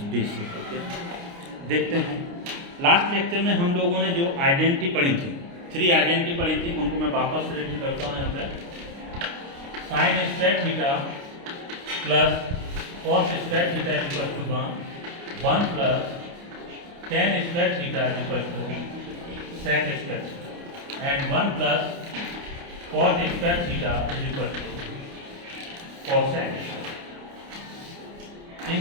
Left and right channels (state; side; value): late; left; 29 ms